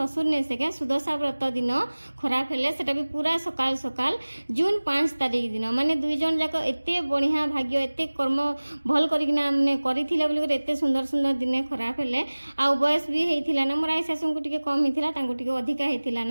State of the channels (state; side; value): inverted; both; correlation -1.00